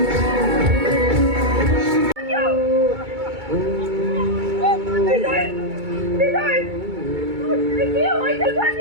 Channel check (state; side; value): late; left; 2.3 ms